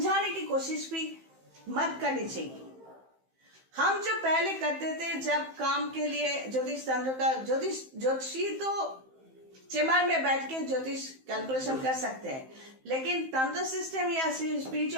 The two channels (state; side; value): late; left; 15 ms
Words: की कोशिश भी मत करनी चाहिए। हम जो पहले करते थे, जब काम के लिए ज्योतिष तंत्र का, ज्योतिषी तो चेम्बर में बैठ के ज्योतिष कैलकुलेशन कर सकते हैं, लेकिन तंत्र सिस्टम या